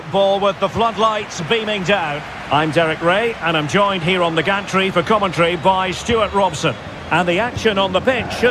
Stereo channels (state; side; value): identical; both; correlation 1.00